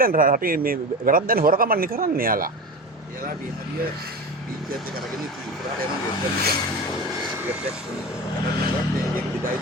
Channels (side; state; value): both; normal; correlation 0.28